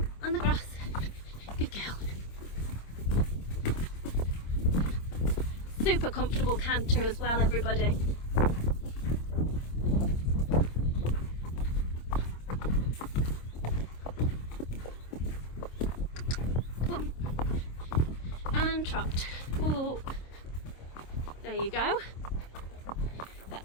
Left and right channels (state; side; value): late; right; 26 ms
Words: on the grass. Good girl. Super comfortable canter as well, everybody. And trot. Oh, there you go.